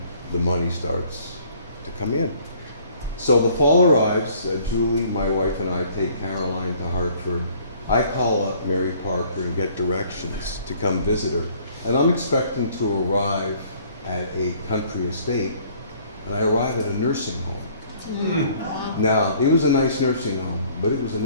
the money starts to come in. So the fall arrives, Julie, my wife, and I take Caroline to Hartford. I call up Mary Parker and get directions to come visit her. And I'm expecting to arrive at a country estate, and I arrive at a nursing home. Now, it was a nice nursing home, but it was a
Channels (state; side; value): inverted; both; correlation -0.58